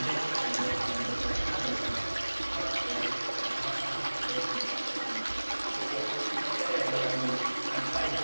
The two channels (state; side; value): inverted; both; correlation -1.00